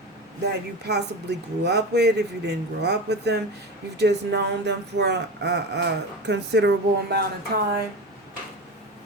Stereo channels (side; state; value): both; normal; correlation 0.25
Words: that you possibly grew up with. If you didn't grow up with them, you've just known them for a considerable amount of time.